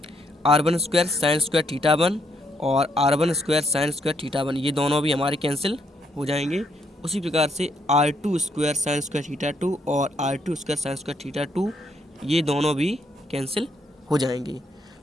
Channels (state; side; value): normal; both; correlation 0.74